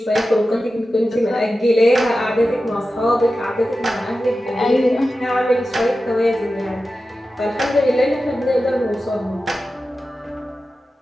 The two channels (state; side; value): normal; both; correlation 0.93